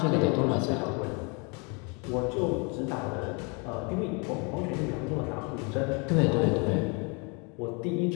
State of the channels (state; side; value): quieter; right; 32.6 dB